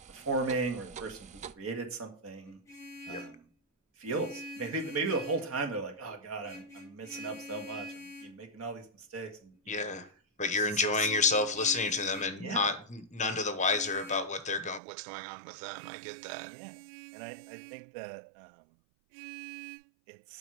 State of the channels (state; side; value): drops out; left; at 14.8 s